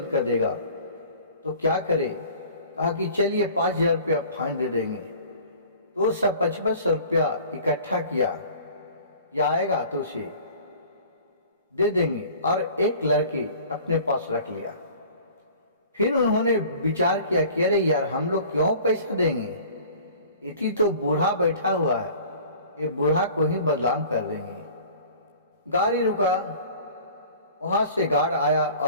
कर देगा। तो क्या करे, कहा कि चलिए 5,000 रुपया फाइन दे देंगे। तो सब 5500 रुपया इकट्ठा किया, या आएगा तो उसे दे देंगे, और एक लड़के अपने पास रख लिया। फिर उन्होंने विचार किया कि अरे यार हम लोग क्यों पैसा देंगे, इतनी तो बूढ़ा बैठा हुआ है, ये बूढ़ा को ही बदनाम कर देंगे। गाड़ी रुका, वहां से गार्ड आया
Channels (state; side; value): inverted; both; correlation -0.46